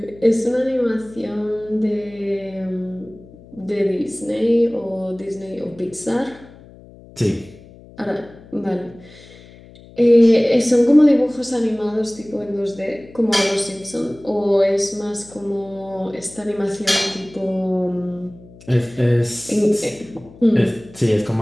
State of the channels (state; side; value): noise; left; hum, 22 dB below the sound